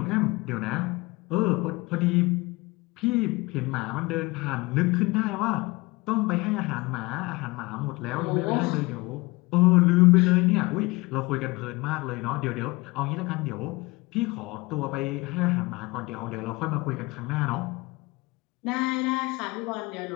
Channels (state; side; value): quieter; right; 23.1 dB